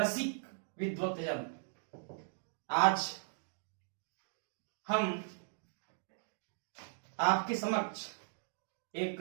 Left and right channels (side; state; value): left; silent; digital silence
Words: विद्वत्तजन, आज हम आपके समक्ष एक